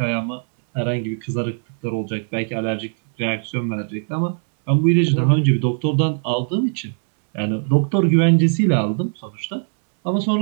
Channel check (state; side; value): silent; left; 56 dB below the other